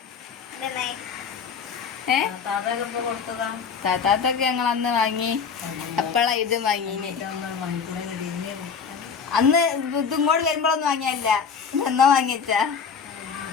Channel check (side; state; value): right; quieter; 6.2 dB